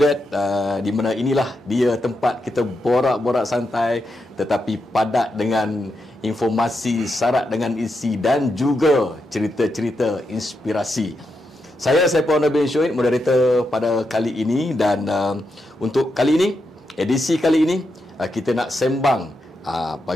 di mana inilah dia tempat kita borak-borak santai tetapi padat dengan informasi, syarat dengan isi dan juga cerita-cerita inspirasi. Saya Saiful Nabil Syuid, moderator pada kali ini, dan untuk kali ini, edisi kali ini, kita nak sembang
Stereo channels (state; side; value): normal; both; correlation 0.85